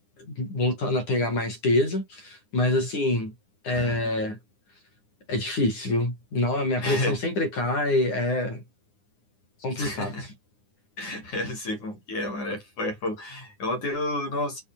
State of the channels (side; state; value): right; late; 9.8 ms